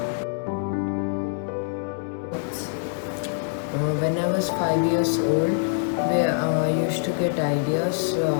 When I was 5 years old, I used to get ideas.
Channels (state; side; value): silent; right; 62 dB below the other